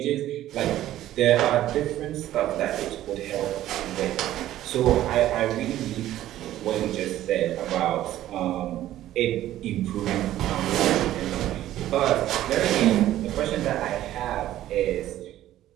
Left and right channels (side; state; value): left; quieter; 13.5 dB